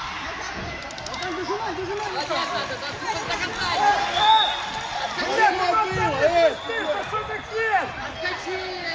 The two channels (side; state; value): both; identical; correlation 1.00